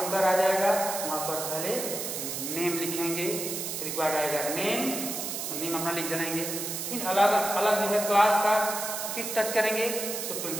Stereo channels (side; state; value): right; noise; hiss, 4 dB below the sound